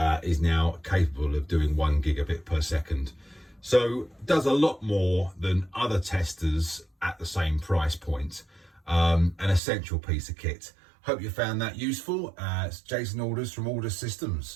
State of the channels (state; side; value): drops out; left; at 9.6 s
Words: is now capable of doing 1 gigabit per second. So it does a lot more than other testers at the same price point. An essential piece of kit. Hope you found that useful. It's Jason Aldous from Aldous